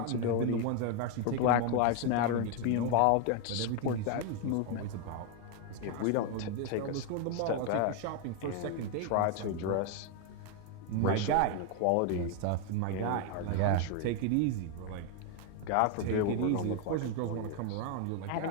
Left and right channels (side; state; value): both; different; correlation 0.01